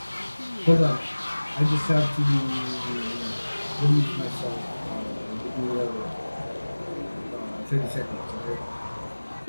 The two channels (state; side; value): inverted; both; correlation -1.00